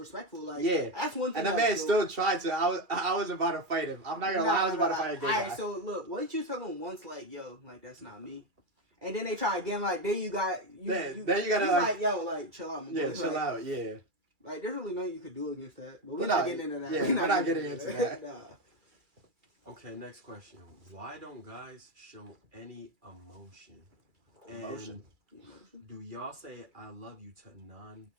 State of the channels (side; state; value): left; late; 2.3 ms